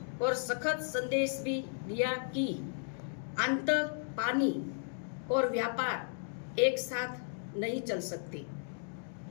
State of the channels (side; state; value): right; silent; digital silence